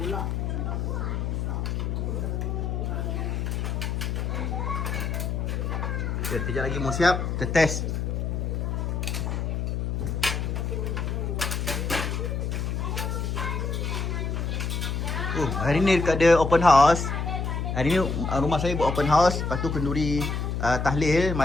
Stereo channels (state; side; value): noise; left; hum, 1 dB below the sound